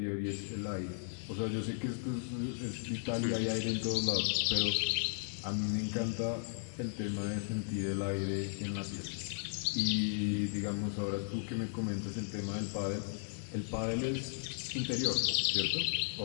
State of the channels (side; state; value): right; silent; digital silence